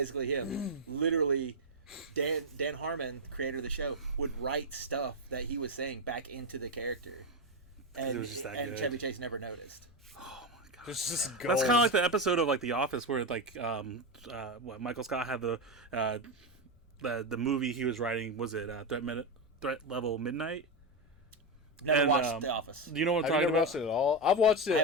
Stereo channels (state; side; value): normal; both; correlation 0.09